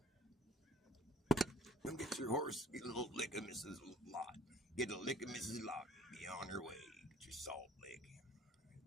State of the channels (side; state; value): both; normal; correlation 0.54